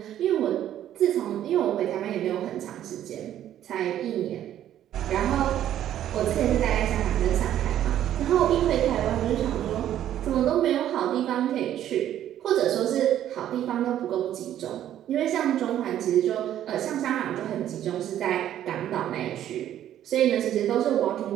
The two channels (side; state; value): left; quieter; 11.5 dB